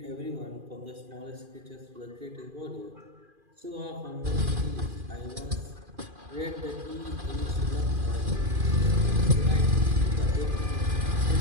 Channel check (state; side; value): late; left; 2.4 ms